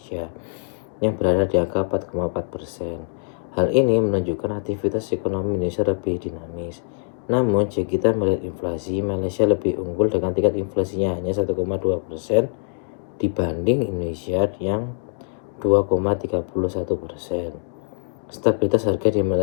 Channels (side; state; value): right; silent; 61 dB below the other